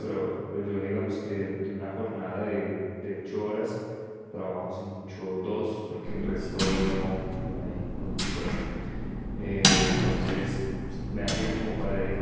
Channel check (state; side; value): identical; both; correlation 1.00